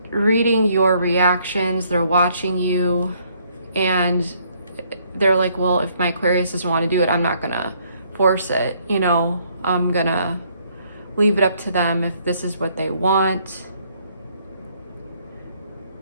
reading your reactions, they're watching you, and they're like, well, if my Aquarius doesn't want to do it, I'm not gonna force it, you know, I'm gonna leave it up to them if this is what they want.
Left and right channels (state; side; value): inverted; both; correlation -0.67